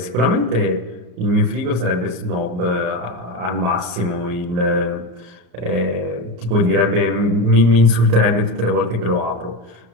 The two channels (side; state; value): left; late; 34 ms